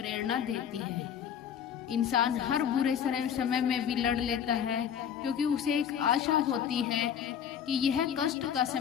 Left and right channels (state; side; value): quieter; right; 8.5 dB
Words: देती है। इंसान हर बुरे समय में भी लड़ लेता है क्योंकि उसे एक आशा होती है कि यह कष्ट का